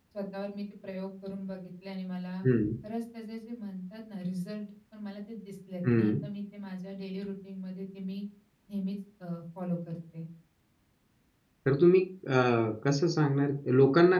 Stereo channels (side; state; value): both; identical; correlation 1.00